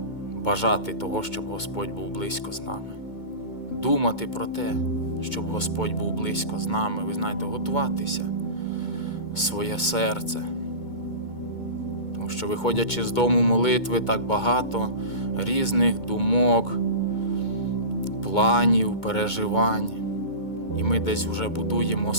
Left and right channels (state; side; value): late; right; 2.2 ms